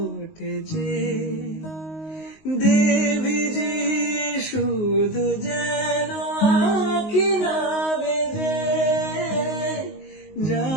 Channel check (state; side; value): late; right; 19 ms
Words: যে, দেবী যে শুধু যেন আঁখি না বেজে।